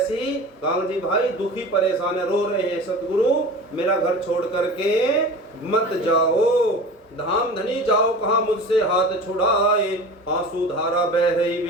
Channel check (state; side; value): normal; both; correlation 0.36